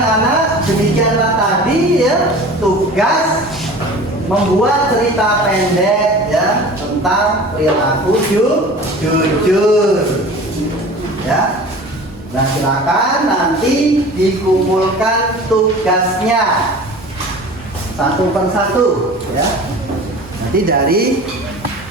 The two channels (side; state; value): both; normal; correlation 0.40